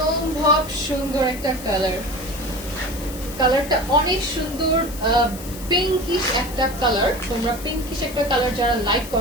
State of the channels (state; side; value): noise; left; hiss, 14 dB below the sound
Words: সুন্দর একটা কালার। কালারটা অনেক সুন্দর, পিঙ্কিশ একটা কালার। তোমরা পিঙ্কিশ একটা কালার যারা লাইক